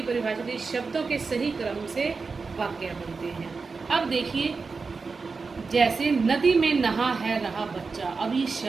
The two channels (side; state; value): left; quieter; 4.5 dB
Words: परिभाषा दी, शब्दों के सही क्रम से वाक्य बनते हैं। अब देखिए जैसे नदी में नहा है रहा बच्चा, अब ये